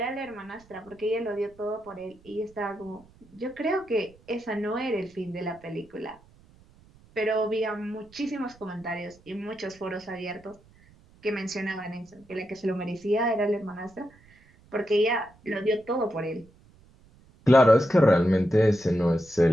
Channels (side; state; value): right; noise; rumble, 27 dB below the sound